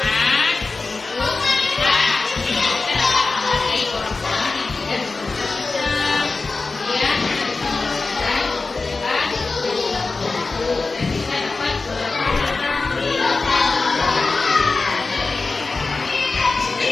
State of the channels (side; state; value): right; quieter; 3.8 dB